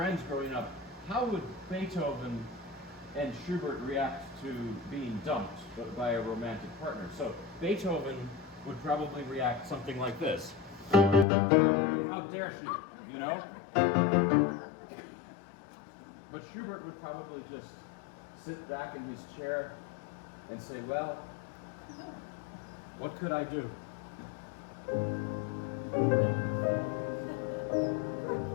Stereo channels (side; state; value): right; drops out; at 11.2 s